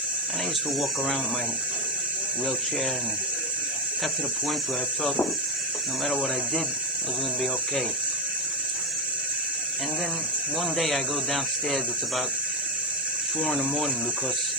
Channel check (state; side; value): noise; left; hiss, 26 dB below the sound